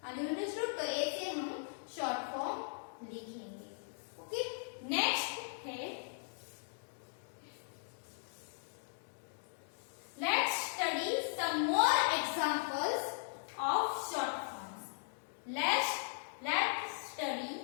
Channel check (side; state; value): right; silent; digital silence